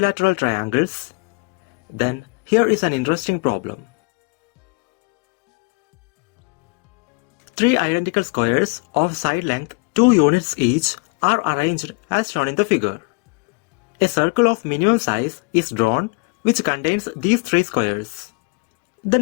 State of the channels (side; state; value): right; quieter; 31.0 dB